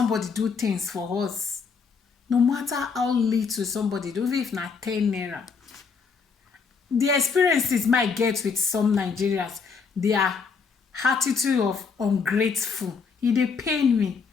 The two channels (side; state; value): right; quieter; 5.4 dB